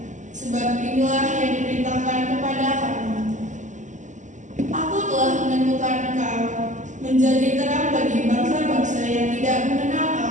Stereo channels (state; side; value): late; left; 0.36 ms